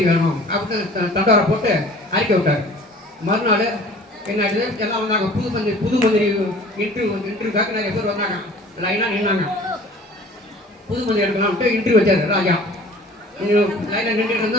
வேணும் அப்படின்னு தண்டோரை போட்டு அறிக்கை விட்டார். மறுநாள் என்ன ஆயிடுது, எல்லாம் வந்தாங்க, புது மந்திரி இன்டர்வியூக்காக நிறைய பேர் வந்தாங்க, லைனாக நின்னாங்க. புது மந்திரி எடுக்கலாம்ட்டு இன்டர்வியூ வச்சாரு ராஜா. லைனில் நின்றுட்டு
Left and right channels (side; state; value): both; normal; correlation 0.47